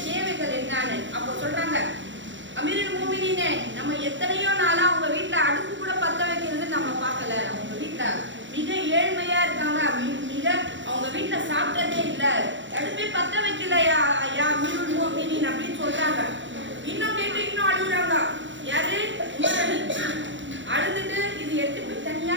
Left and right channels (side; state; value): left; late; 0.54 ms